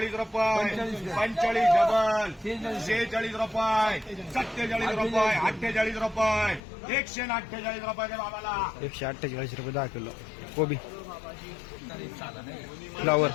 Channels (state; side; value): drops out; right; at 6.6 s